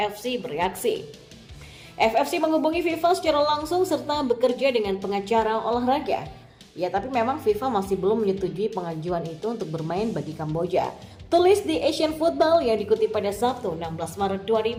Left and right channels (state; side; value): identical; both; correlation 1.00